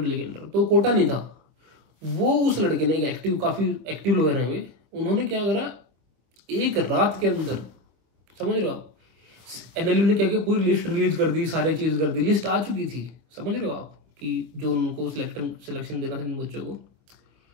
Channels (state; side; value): late; left; 25 ms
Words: के अंदर तो कोटा नहीं था। वो उस लड़के ने, एक काफ़ी एक्टिव लॉयर हैं वे, उन्होंने क्या करा, एक रात के अंदर, समझ रहे हो आप, एनएलयू ने क्या किया, पूरी लिस्ट रिलीज कर दी, सारी चीज़ कर दी, लिस्ट आ चुकी थी, समझ रहे हो आप, कि जो उनको सिलेक्शन देना था इन बच्चों को।